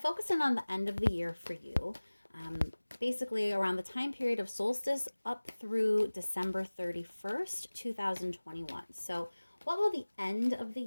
in on the end of the year for you. Basically around the time period of solstice up through December 31st, 2021. So what will the end of the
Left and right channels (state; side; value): inverted; both; correlation -1.00